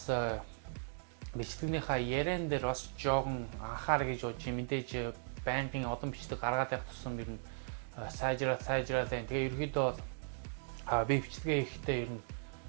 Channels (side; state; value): left; silent; digital silence